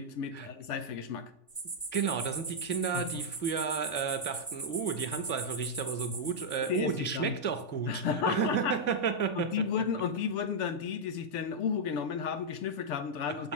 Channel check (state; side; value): late; right; 3.5 ms